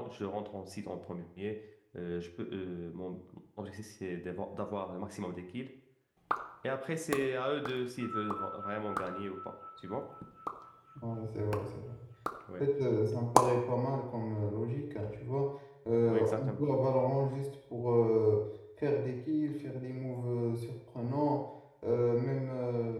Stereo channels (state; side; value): identical; both; correlation 1.00